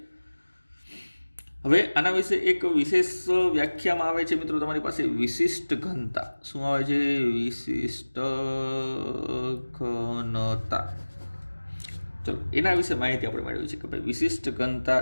હવે આના વિશે એક વિશેષ વ્યાખ્યામાં આવે છે મિત્રો તમારી પાસે વિશિષ્ટ ઘનતા. શું આવે છે? વિશિષ્ટ ઘનતા. ચલો, એના વિશે માહિતી આપણે મેળવી છે કે ભાઈ વિશિષ્ટ ઘનતા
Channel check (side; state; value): both; inverted; correlation -1.00